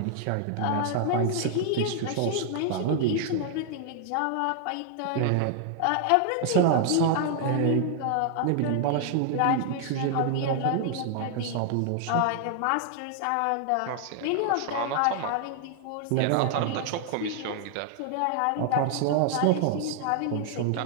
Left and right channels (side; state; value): both; different; correlation -0.01